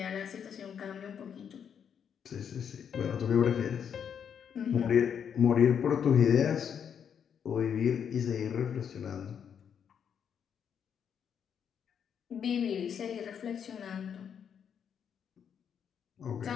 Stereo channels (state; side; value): quieter; right; 7.9 dB